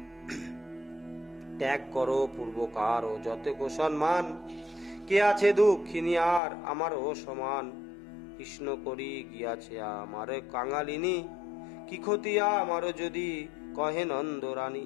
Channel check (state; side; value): drops out; right; at 6.4 s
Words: ত্যাগ করো পূর্বকার ও যত সম্মান, কে আছে দুঃখিনী আর আমারও সমান। কৃষ্ণ করি গিয়াছে আমার কাঙালিনী, কি ক্ষতি আমারও যদি কহে নন্দ